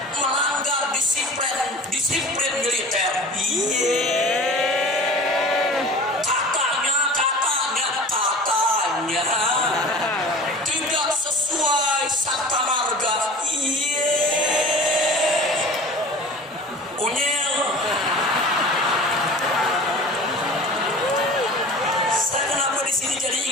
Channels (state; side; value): normal; both; correlation 0.40